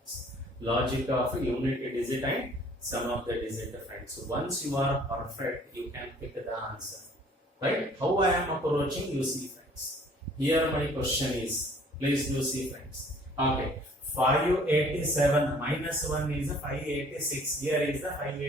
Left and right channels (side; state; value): both; normal; correlation 0.55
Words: Logic of unit digit and sum of the digit friends. Once you are perfect, you can pick the answer. Right? How I am approaching, you see friends. Here my question is, please do see friends. Okay. 587 minus 1 is 586. Here is the